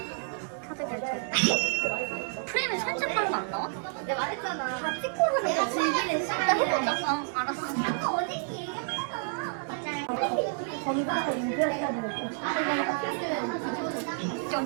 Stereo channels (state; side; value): silent; left; digital silence